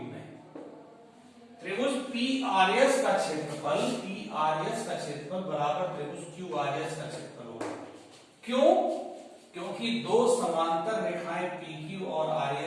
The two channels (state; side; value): identical; both; correlation 1.00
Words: में। त्रिभुज पी आर एस का क्षेत्रफल, पी आर एस का क्षेत्रफल बराबर त्रिभुज क्यू आर एस का क्षेत्रफल होगा। क्यों? क्योंकि दो समांतर रेखाएं पी क्यू और आर